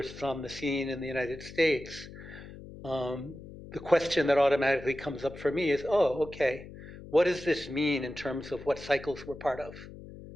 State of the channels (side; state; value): left; noise; hum, 15 dB below the sound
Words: on the scene in the United States, the question that automatically comes up for me is, oh, okay, what does this mean in terms of what cycles we're part of?